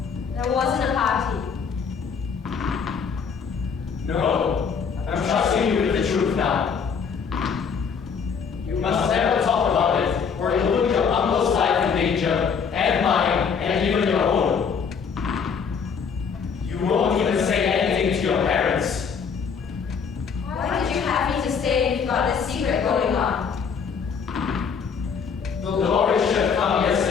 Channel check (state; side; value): quieter; right; 6.3 dB